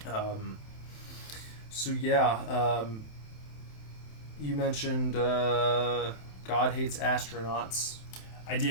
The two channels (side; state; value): right; late; 27 ms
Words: You mentioned God Hates Astronauts. I